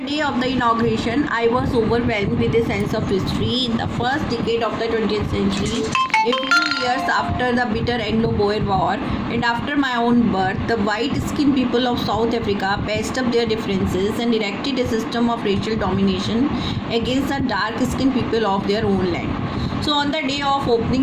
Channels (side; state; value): both; identical; correlation 1.00